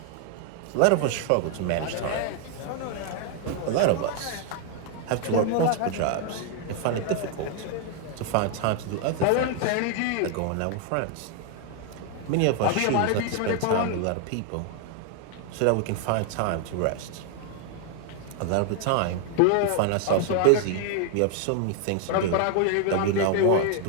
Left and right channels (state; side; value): different; both; correlation 0.00